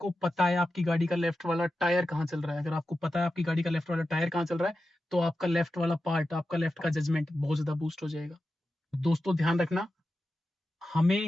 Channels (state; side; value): normal; both; correlation 0.92